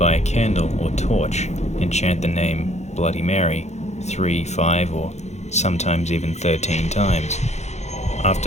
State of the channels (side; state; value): right; late; 0.33 ms